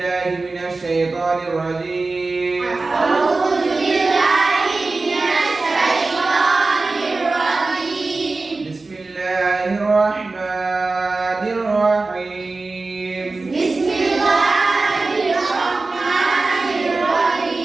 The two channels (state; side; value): quieter; left; 3.6 dB